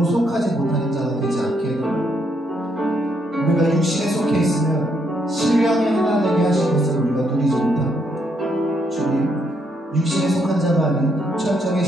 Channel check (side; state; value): both; normal; correlation 0.75